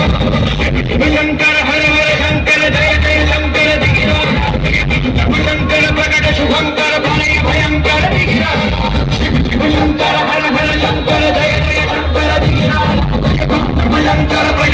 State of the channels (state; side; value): identical; both; correlation 1.00